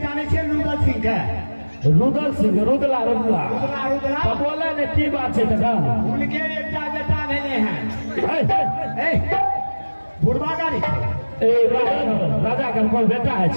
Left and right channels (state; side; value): inverted; both; correlation -1.00